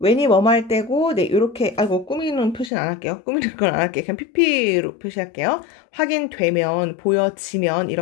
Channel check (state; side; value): drops out; right; at 2.7 s